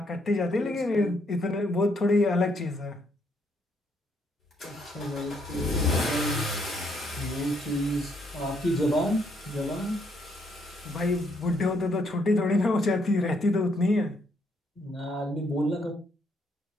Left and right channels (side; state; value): both; normal; correlation 0.72